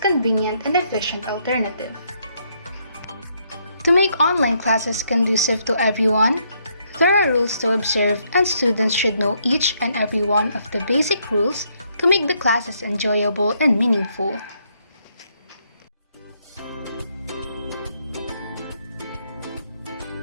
convenient and efficient alternative. To make online classes conducive to everyone, there are rules to observe, and students should know each and every one of the basic rules to make the classes enjoyable and meaningful.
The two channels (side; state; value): both; inverted; correlation -0.73